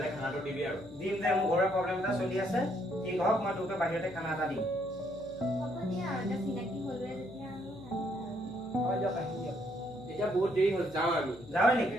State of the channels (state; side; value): noise; left; hum, 20 dB below the sound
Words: খানাটো দিবি আৰু দিম দে মোৰ ঘৰৰ প্ৰব্লেম এটা চলি আছে ঠিক হওক মই তোকে বাহিৰতে খানা এটা দিম হ'ব দিয়া আৰু এতিয়া চিনাকি হ'লোৱে যেতিয়া আৰু হয় দিয়ক আহিম দিয়ক এতিয়া বহুত দেৰি হ'ল যাওঁ আমি যাওঁ নেকি